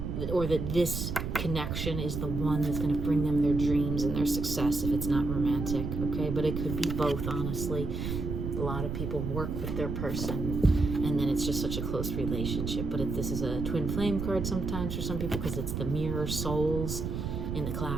or that this connection is the one that's going to bring them their dreams and their success if it's not romantic, okay? But it could be both, honestly. A lot of people work with their person, and then it's just such a close relationship. But this is a twin flame card sometimes for some people, because it's the mirror souls in the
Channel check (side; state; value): right; noise; rumble, 3 dB below the sound